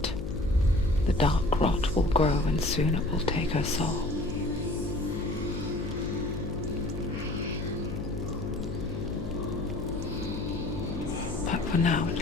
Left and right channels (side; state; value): left; noise; hum, 6 dB below the sound